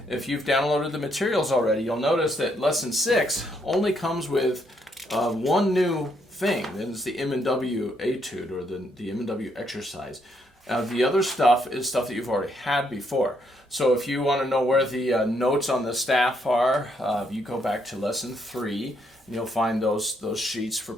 If you've downloaded the materials already, you'll notice that lesson 6 only comes with one new thing, and it's the M and W etude, or the M and W exercise. The other stuff is stuff that you've already had before. So if you want to know where the notes on the staff are, you go back to lesson 3, and you'll find those sheets for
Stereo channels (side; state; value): both; normal; correlation 0.74